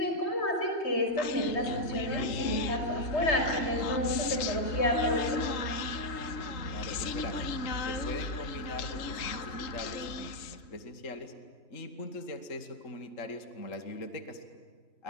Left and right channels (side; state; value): right; late; 3.7 ms